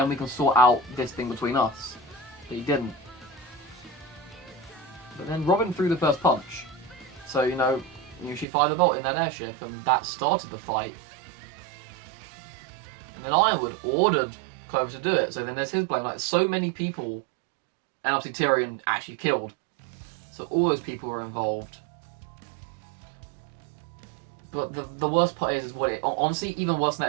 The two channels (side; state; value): left; drops out; at 8.5 s